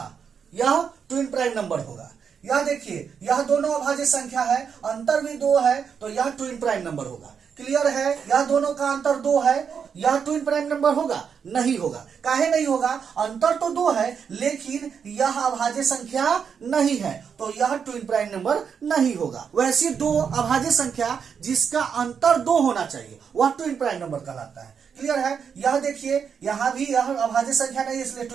यह ट्विन प्राइम नंबर होगा। यह देखिए, यह दोनों अभाज्य संख्या है, अंतर भी 2 है, तो यह ट्विन प्राइम नंबर होगा। क्लियर है? यह दोनों का अंतर 2 है, यह ट्विन प्राइम नंबर होगा? नहीं होगा। काहे नहीं होगा? अंतर तो 2 है, लेकिन यह अभाज्य संख्या नहीं है, तो यह ट्विन प्राइम नंबर नहीं होगा। वैसी दो अभाज्य संख्या जिसका अंतर 2 होना चाहिए वह ट्विन प्राइम नंबर कहलाता है। क्लियर है? यह देखिए, यहां भी यह अभाज्य संख्या नहीं, इसलिए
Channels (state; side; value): quieter; left; 6.8 dB